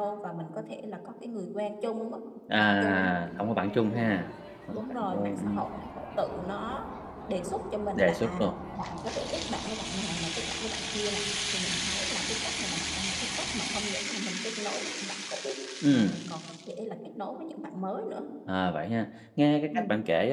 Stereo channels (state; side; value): identical; both; correlation 1.00